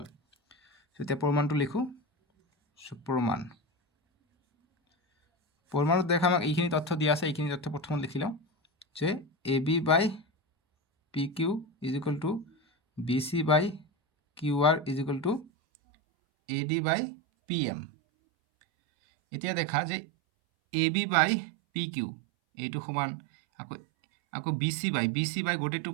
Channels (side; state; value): left; drops out; at 15.5 s